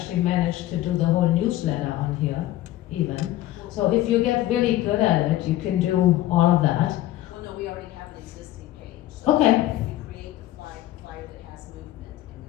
managed to do the whole newsletter on here, even. So if you get really good at it, you can do all of that. Well, no, we already have an existing page. So Okay. if we create the flyer that has movement and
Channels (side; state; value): right; quieter; 14.8 dB